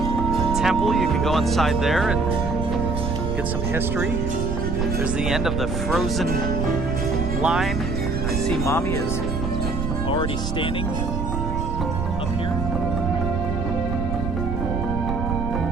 temple. You can go inside there and get some history. There's the end of the frozen line. I see Mommy is already standing up here.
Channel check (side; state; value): right; noise; rumble, 2 dB below the sound